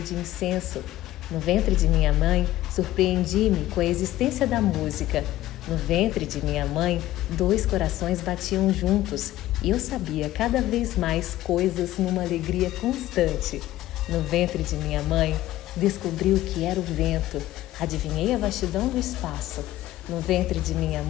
de incenso. No ventre de minha mãe, surpreendi-me com a existência da música. No ventre de minha mãe, 2 corações batiam juntos e eu sabia cada vez mais coisas numa alegria constante. No ventre de minha mãe, descobri o que era o vento, adivinhei a vastidão do espaço. No ventre de minha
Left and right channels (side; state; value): right; quieter; 15.2 dB